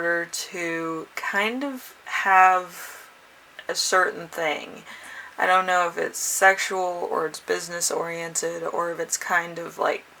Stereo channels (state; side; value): identical; both; correlation 1.00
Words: to kind of have a certain thing. I don't know if it's sexual or it's business oriented or if it's kind of like